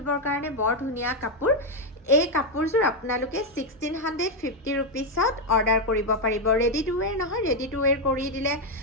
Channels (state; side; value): normal; both; correlation 0.03